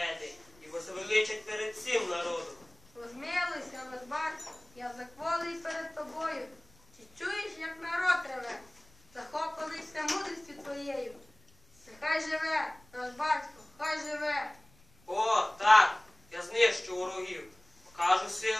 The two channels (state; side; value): noise; left; rumble, 29 dB below the sound